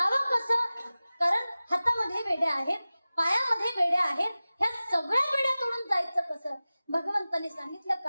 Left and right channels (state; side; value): inverted; both; correlation -0.97